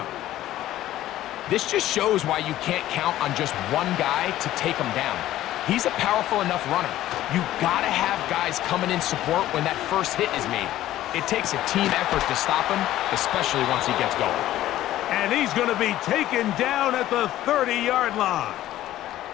This just shows why you can't count on just one guy to take him down. He's a powerful enough runner. You gotta have guys coming in support when that first hit is made. It takes a team effort to stop him, especially once he gets going. And he's going to be taken down at the 30-yard line.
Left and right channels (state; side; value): quieter; right; 14.0 dB